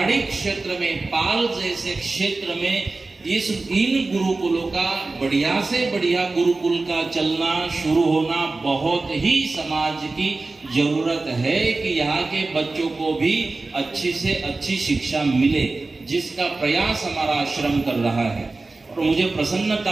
क्षेत्र में, पाल जैसे क्षेत्र में इन गुरुकुलों का, बढ़िया से बढ़िया गुरुकुल का चलना शुरू होना बहुत ही समाज की जरूरत है कि यहाँ के बच्चों को भी अच्छी से अच्छी शिक्षा मिले, जिसका प्रयास हमारा आश्रम कर रहा है। और मुझे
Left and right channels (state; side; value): quieter; left; 3.5 dB